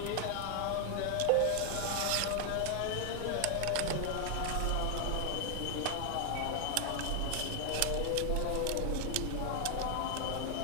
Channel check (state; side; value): different; both; correlation 0.00